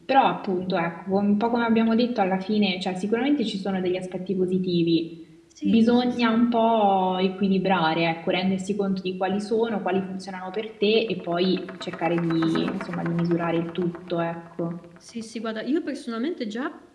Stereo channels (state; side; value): identical; both; correlation 1.00